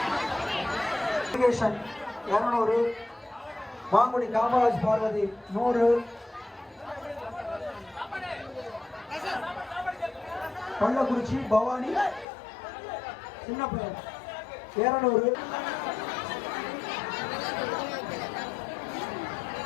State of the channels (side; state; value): right; drops out; at 12.2 s